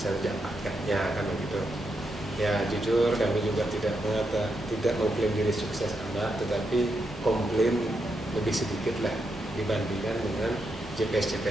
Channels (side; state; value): both; normal; correlation 0.83